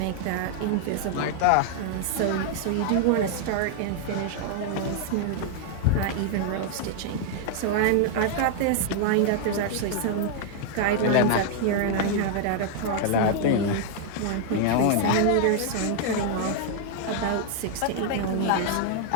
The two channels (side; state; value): both; different; correlation 0.00